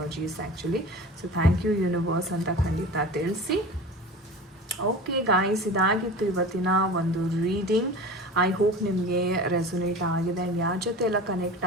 actually. So thank you universe ಅಂತ ಖಂಡಿತ ತಿಳಿಸಿ. ಓಕೆ ಗಾಯ್ಸ್, ಇದಾಗಿತ್ತು ಇವತ್ತಿನ ಒಂದು ರೀಡಿಂಗ್. ಐ ಹೋಪ್ ನಿಮಗೆ ರೆಸೊನೇಟ್ ಆಗಿದೆ ಆ್ಯಂಡ್ ಯಾರ ಜೊತೆ ಎಲ್ಲ ಕನೆಕ್ಟ್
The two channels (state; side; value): normal; both; correlation 0.35